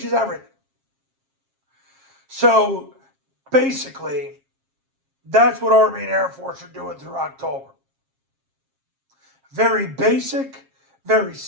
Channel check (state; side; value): late; left; 7.4 ms